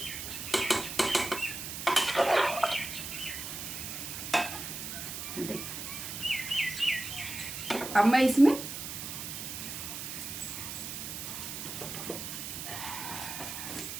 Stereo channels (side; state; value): right; noise; hiss, 6 dB below the sound